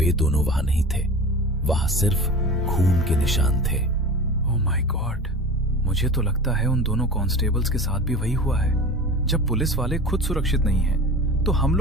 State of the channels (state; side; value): normal; both; correlation 0.35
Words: दोनों वहां नहीं थे। वहां सिर्फ खून के निशान थे। ओह माय गॉड, मुझे तो लगता है उन दोनों कांस्टेबल्स के साथ भी वही हुआ है। जब पुलिस वाले खुद सुरक्षित नहीं हैं, तो हम